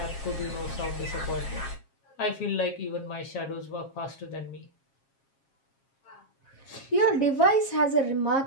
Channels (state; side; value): late; right; 7.4 ms